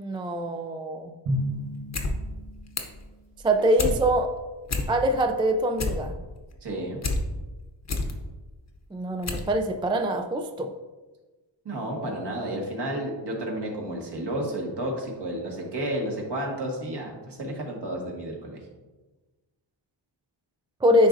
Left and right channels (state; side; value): normal; both; correlation 0.33